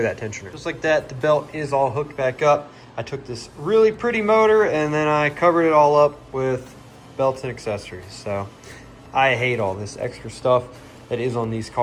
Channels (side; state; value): both; identical; correlation 1.00